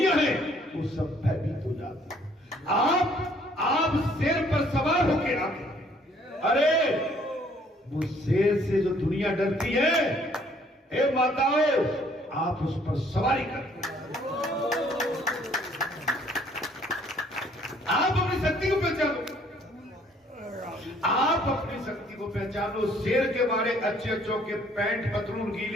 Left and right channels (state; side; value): normal; both; correlation 0.61